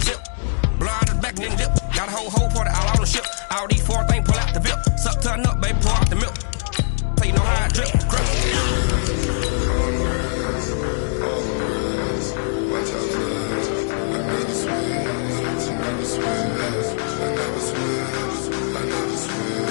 Blow out the back then dip. Got a whole party all on the ship. All these 4 things pull out the VIP. Suck turn up, baby, pour out the milk. So you know how I drip. Crush. Watch out, cuz I never switch, I never switch. I never switch, I never switch.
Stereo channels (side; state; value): right; silent; digital silence